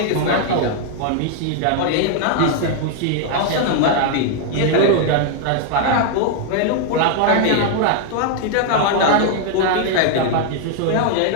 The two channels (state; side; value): different; both; correlation 0.00